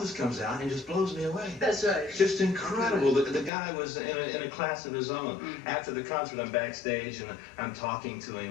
comes out and just blows me away. That's right. Just incredible. The guy was in a class of his own. After the concert, I'm backstage and I'm talking to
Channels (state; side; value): drops out; right; at 3.5 s